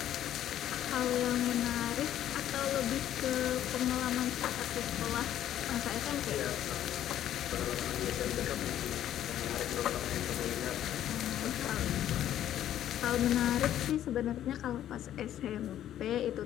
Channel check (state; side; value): quieter; right; 11.6 dB